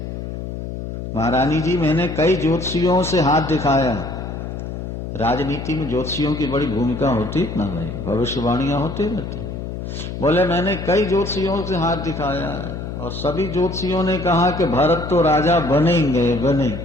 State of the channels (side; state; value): left; noise; hum, 7 dB below the sound